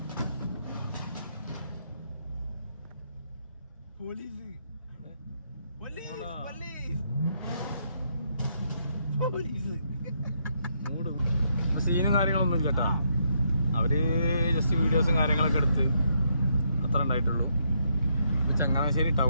സീനും കാര്യങ്ങളൊന്നും ഇല്ല കേട്ടോ. അവര് ജസ്റ്റ് വീഡിയോസും കാര്യങ്ങളൊക്കെ എടുത്ത് അത്ര ഉണ്ടായിട്ടുള്ളൂ. ചങ്ങനാശ്ശേരി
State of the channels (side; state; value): both; inverted; correlation -0.75